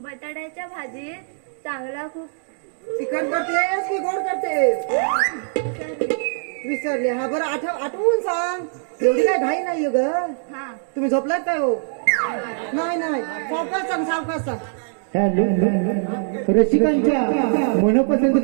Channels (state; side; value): silent; left; digital silence